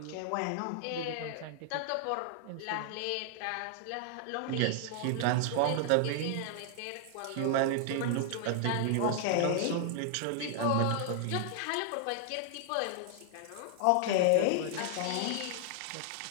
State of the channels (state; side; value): different; both; correlation 0.00